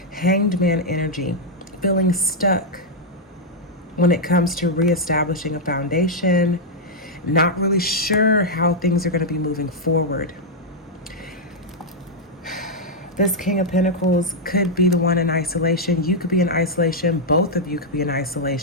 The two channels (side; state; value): both; normal; correlation -0.04